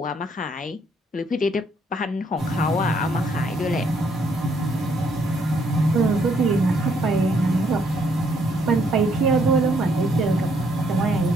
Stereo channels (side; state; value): both; normal; correlation 0.70